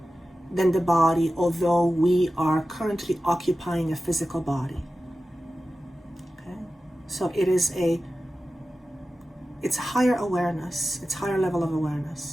than the body, although we are currently occupying a physical body. So it's higher awareness. It's higher level of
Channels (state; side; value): normal; both; correlation 0.94